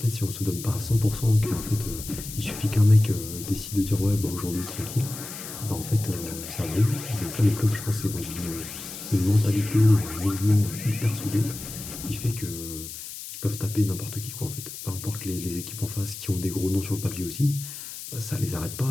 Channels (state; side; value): noise; left; hiss, 10 dB below the sound